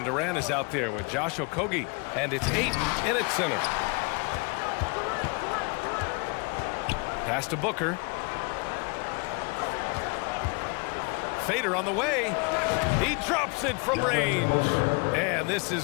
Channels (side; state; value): right; quieter; 31.4 dB